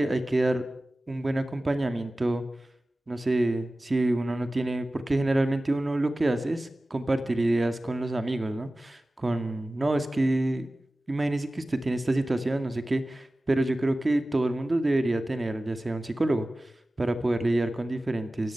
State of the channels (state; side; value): normal; both; correlation 0.96